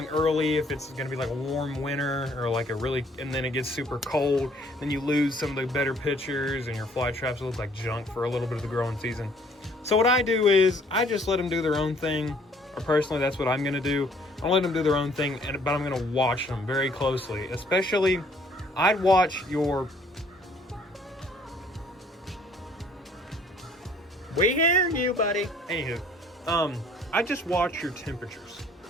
early if it's gonna be a warm winter or and then it gets super cold, then you lose some of the better pictures and your fly traps look like junk for a little bit of the growing season. So what I do is I just let them do their own thing, or personally that's what I'm gonna do. I'll let them do their own thing, but I'm gonna watch them very closely. Especially, I'd watch your... We hear you, buddy. Anywho, I just watch your temperatures.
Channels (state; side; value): normal; both; correlation 0.60